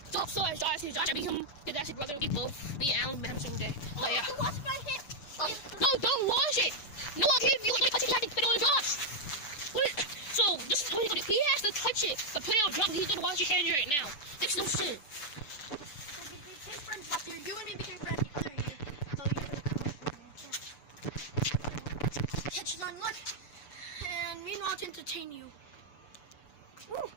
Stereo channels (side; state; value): right; late; 6.9 ms